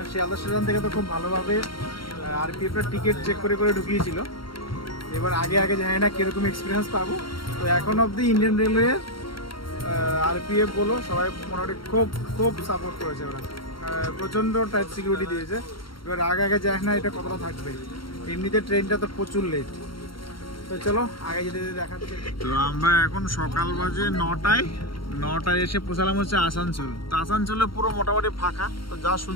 শিয়ালদা স্টেশন থেকে তো খুব ভালোভাবে আরপিএফের টিকিট চেক করে ঢুকিয়েছিল। এবার আগে জানি না কীরকম এক্সপিরিয়েন্স পাবো। তো এখন অবধি ইন্ডিয়ান রেলওয়ে আরপিএফ বলো সবাই মোটামুটি খুব সাপোর্ট করেছে। ওরা প্রচণ্ড টাইট সিকিউরিটি দিয়েছে। এবার আগে যায় না এটা কতটা থাকবে। এমনিতে ট্রেনটা তো প্রচুর লেট। তো চলো আগে যেতে দেখাচ্ছে। তো আমরা এখন সকাল বাজে 9টায় এসে পৌঁছালাম হচ্ছে আসানসোল। তো আসানসোলে পুরো মোটামুটি ফাঁকা। তো যা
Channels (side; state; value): right; late; 0.73 ms